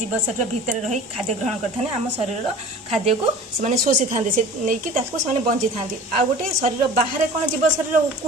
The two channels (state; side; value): normal; both; correlation 0.41